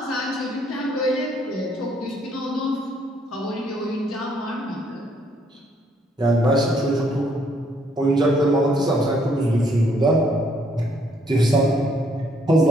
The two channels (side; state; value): both; normal; correlation 0.68